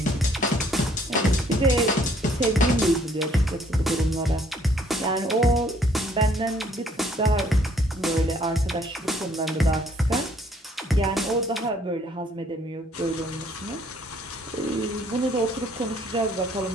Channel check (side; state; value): both; normal; correlation 0.63